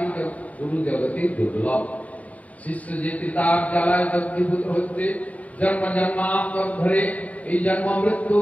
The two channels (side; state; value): right; late; 0.070 ms